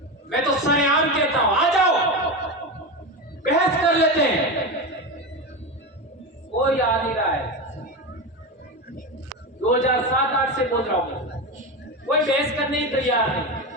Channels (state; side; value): normal; both; correlation 0.19